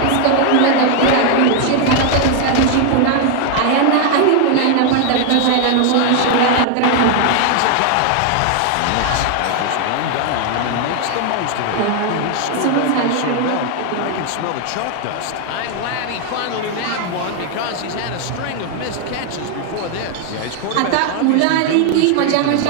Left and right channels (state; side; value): different; both; correlation 0.00